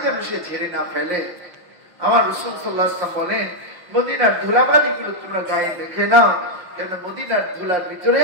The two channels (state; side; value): late; left; 6.0 ms